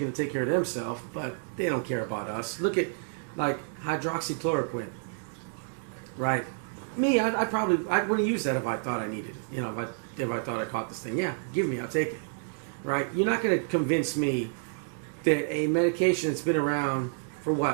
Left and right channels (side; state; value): left; silent; digital silence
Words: to take care of themselves, but they don't care about us. Look at like hydroxychloroquine, right? Me, I wouldn't use that if I thought I needed it. You know, if I thought I caught this thing, yeah, give me, I'll take it. Right? You're not going to convince me that a medication that's been around for